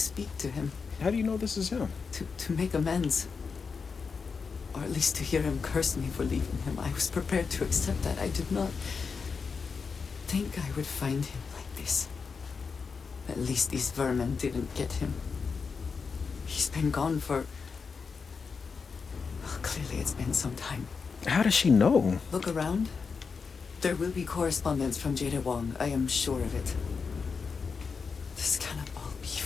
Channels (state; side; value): quieter; right; 5.3 dB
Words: to him. How do you know this is him? To make amends. Or at least to hear him curse me for leaving him. I was prepared to accept that. I did not think I would find him like this. At least these vermin didn't get him. He's been gone for... Well, clearly it's been some time. How does she know? Look around. There will be correspondence from Jada Wong. I am sure of it. This cannot all be